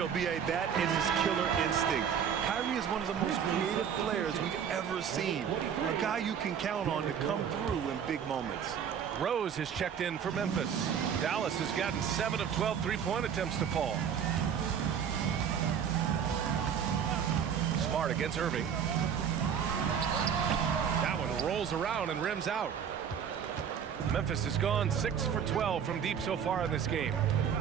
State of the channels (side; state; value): left; quieter; 8.0 dB